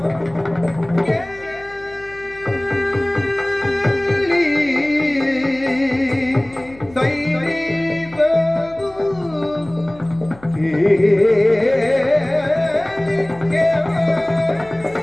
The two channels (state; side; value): noise; left; hum, 23 dB below the sound